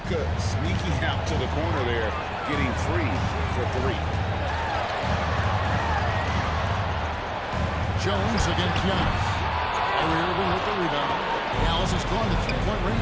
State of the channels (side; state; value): both; identical; correlation 1.00